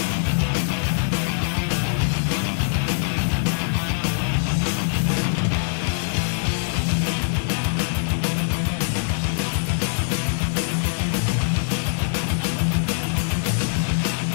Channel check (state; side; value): silent; right; 60 dB below the other